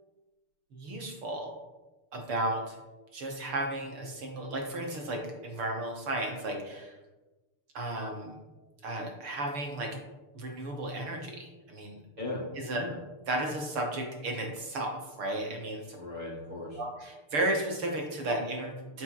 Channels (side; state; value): left; late; 6.7 ms